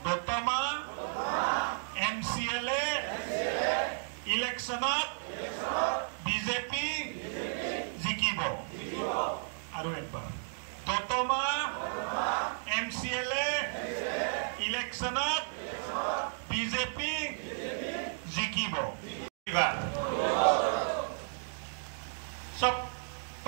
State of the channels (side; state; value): left; silent; digital silence